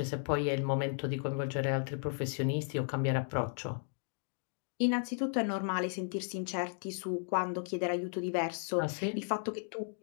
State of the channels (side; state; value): right; silent; 55 dB below the other